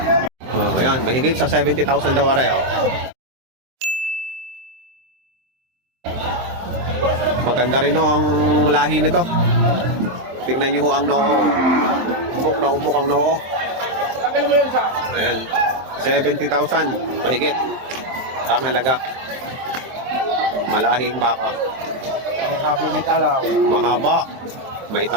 Oh, ayan, mahigit sa 70,000 daw aray, oh. Maganda rin ho ang lahi nito. Tignan niyo ho ang noo. Umbok na umbok ang noo. Ayan, 70,000 mahigit ang halaga. Malahing baka. Sabi may talaw. Mahaba. May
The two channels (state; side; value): late; left; 23 ms